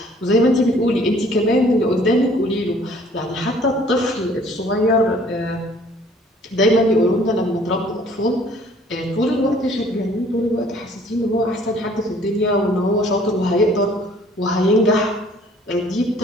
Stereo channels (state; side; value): normal; both; correlation 0.56